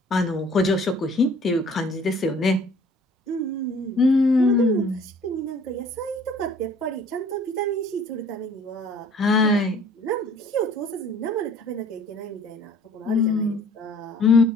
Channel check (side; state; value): both; normal; correlation 0.54